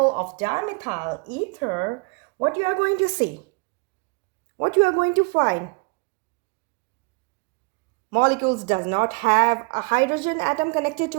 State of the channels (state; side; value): quieter; left; 30.9 dB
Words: of dimethyl ether, what you are going to see, what you are going to find, molecules does not have a hydrogen atom connected to